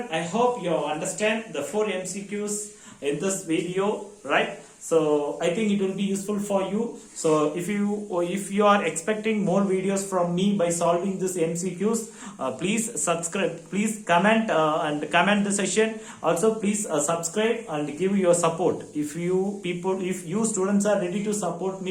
I hope you understand the 4 MCQs in this video, right? So I think it will be useful for you. So if you are expecting more videos from me by solving this MCQs, please subscribe, please comment and comment the session. Also please subscribe and give your support. If you students are ready to support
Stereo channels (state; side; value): identical; both; correlation 1.00